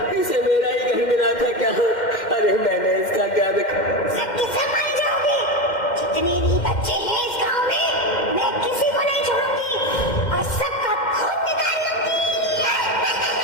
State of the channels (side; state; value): right; late; 2.1 ms